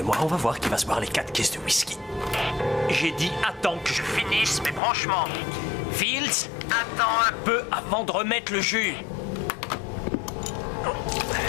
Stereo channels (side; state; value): right; drops out; at 4.8 s